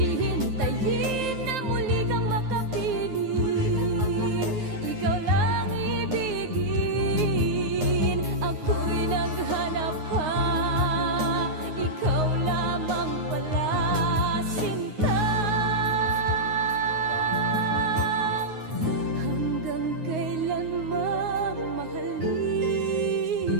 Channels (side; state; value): left; late; 9.5 ms